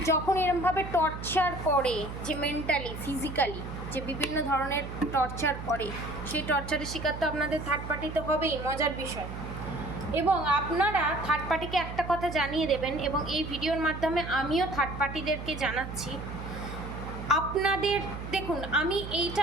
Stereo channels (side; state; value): right; noise; hum, 8 dB below the sound